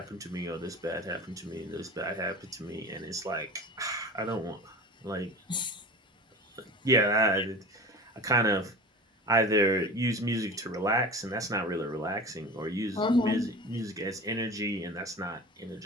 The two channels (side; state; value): both; normal; correlation 0.35